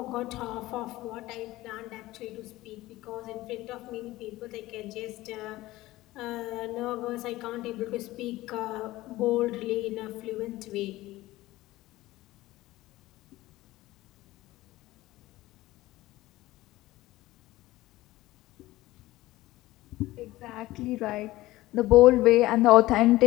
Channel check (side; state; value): right; quieter; 17.6 dB